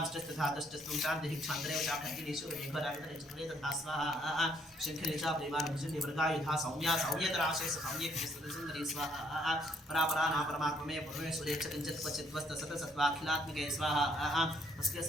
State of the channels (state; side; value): normal; both; correlation 0.67